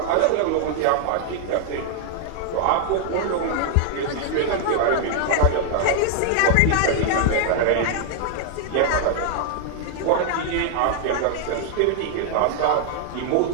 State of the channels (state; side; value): different; both; correlation 0.00